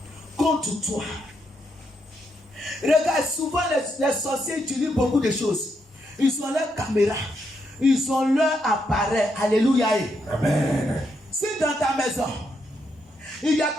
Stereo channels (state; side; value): normal; both; correlation 0.79